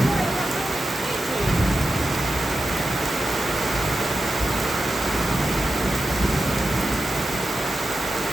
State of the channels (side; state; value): both; normal; correlation 0.90